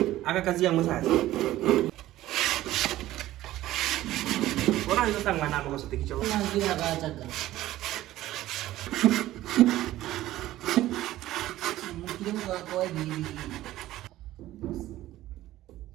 Aga kazi yang sasa. Orang itu tangga nama kau setik cowok. Lagi agak jaga. Mungkin kau ini.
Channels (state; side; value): quieter; left; 15.1 dB